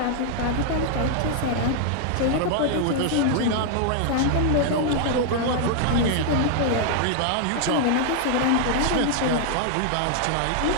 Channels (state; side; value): different; both; correlation 0.00